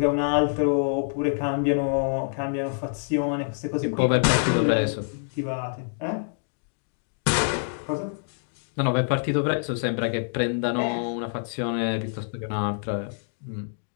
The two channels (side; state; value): right; silent; digital silence